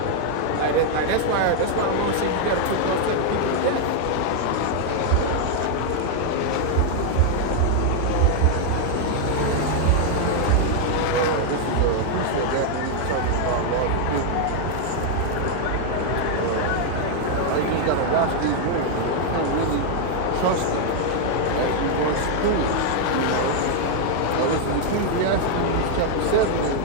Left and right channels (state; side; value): different; both; correlation 0.00